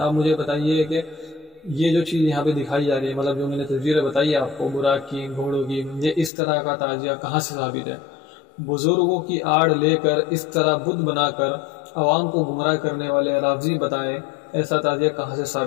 مجھے بتائیے کہ یہ جو چیز یہاں پہ دکھائی جا رہی ہے، مطلب جو میں نے تصویریں بتائی آپ کو براق کی، گھوڑوں کی، یہ اس طرح کا تعزیہ کہاں سے ثابت ہے؟ بزرگوں کی آڑ لے کر اس طرح بت بنا کر عوام کو گمراہ کرنے والے رافضی بتائے ایسا تعزیہ کہاں سے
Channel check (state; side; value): drops out; right; at 6.3 s